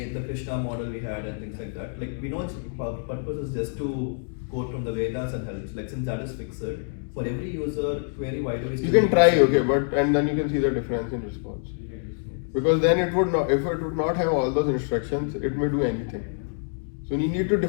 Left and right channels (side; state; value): right; silent; digital silence